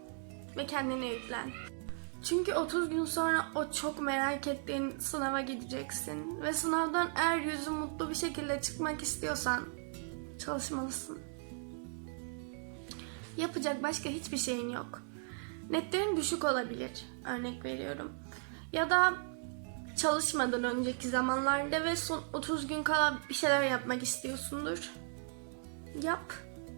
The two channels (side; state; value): left; silent; 53 dB below the other